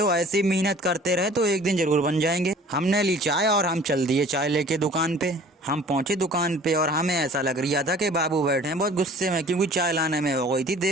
ऐसी मेहनत करते रहे तो एक दिन जरूर बन जाएंगे। हमने ली चाय और हम चल दिए चाय लेके दुकान पे। हम पहुंचे दुकान पे और हमें ऐसा लग रहा था कि बाबू बैठे हैं बहुत गुस्से में, क्योंकि चाय लाने में हो गई थी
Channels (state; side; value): normal; both; correlation 0.49